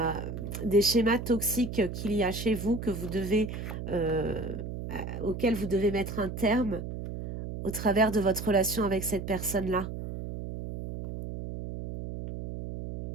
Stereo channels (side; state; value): right; noise; hum, 7 dB below the sound